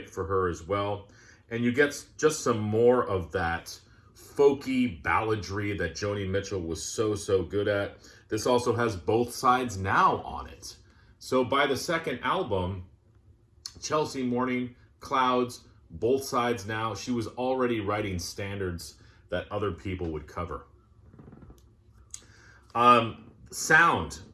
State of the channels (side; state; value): both; identical; correlation 1.00